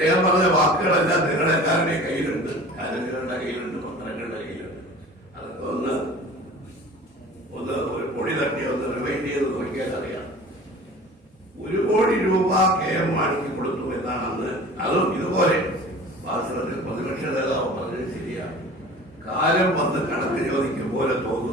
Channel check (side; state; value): both; normal; correlation 0.42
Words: പറഞ്ഞ വാക്കുകളെല്ലാം നിങ്ങളെല്ലാവരുടെയും കയ്യിലുണ്ട്, കാരങ്ങളുടെ കയ്യിലുണ്ട്, പത്രങ്ങളുടെ കയ്യിലുണ്ട്. അതൊക്കെ ഒന്ന് ഒരു പൊടി തട്ടി ഒന്ന് റിവൈൻഡ് ചെയ്ത് നോക്കിയാൽ അറിയാം. 1 കോടി രൂപ KM മാണിക്ക് കൊടുത്തു എന്നാണ് അന്ന്. അതും ഇതുപോലെ വാസ്തവത്തിൽ പ്രതിപക്ഷ നേതാവ് പറഞ്ഞത് ശരിയാണ്. കാലം വന്ന് കണക്ക് ചോദിക്കും പോലെ